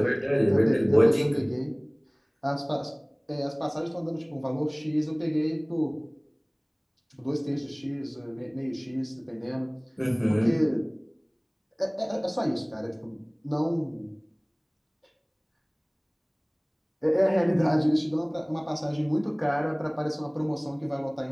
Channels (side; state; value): both; identical; correlation 1.00